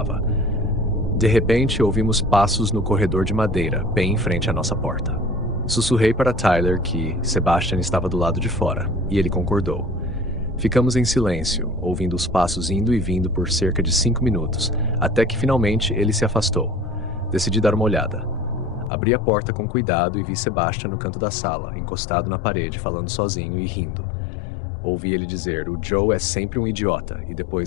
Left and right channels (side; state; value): right; drops out; at 18.9 s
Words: De repente, ouvimos passos no corredor de madeira, bem em frente à nossa porta. Sussurrei para Tyler que Sebastian estava do lado de fora, e ele concordou. Ficamos em silêncio, ouvindo os passos indo e vindo por cerca de 5 minutos, até que finalmente ele se afastou. Decidi dar uma olhada. Abri a porta com cuidado e vi Sebastian no canto da sala, encostado na parede, falando sozinho e rindo. Ouvi ele dizer, "O Joe é sempre um idiota", e